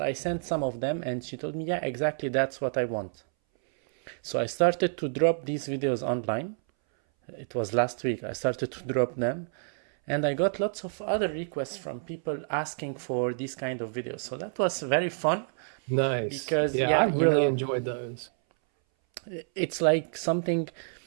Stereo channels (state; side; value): silent; left; 59 dB below the other